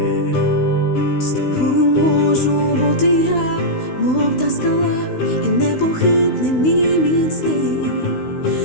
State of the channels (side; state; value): right; late; 16 ms